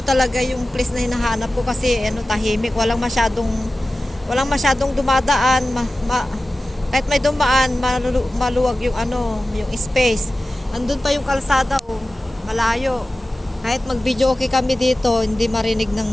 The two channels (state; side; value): normal; both; correlation 0.96